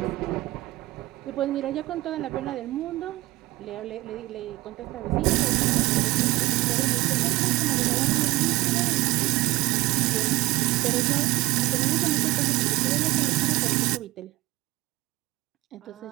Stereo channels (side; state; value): left; quieter; 19.5 dB